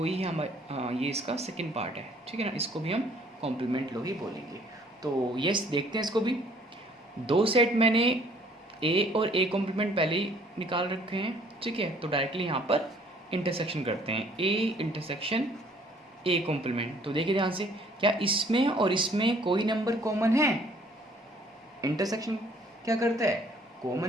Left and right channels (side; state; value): both; normal; correlation 0.59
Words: ही हम ये इसका सेकंड पार्ट है, ठीक है ना, इसको भी हम कॉम्प्लीमेंट लो ही बोलेंगे। तो यस देखते हैं इसको भी। दो सेट मैंने ए और ए कॉम्प्लीमेंट पहले ही निकाल रखे हैं, ठीक है, तो डायरेक्टली यहाँ पर इंटरसेक्शन करते हैं, ए इंटरसेक्शन ए कॉम्प्लीमेंट। तो देखिए ध्यान से, क्या इसमें और इसमें कोई नंबर कॉमन है, इंटरसेक्शन क्या करता है,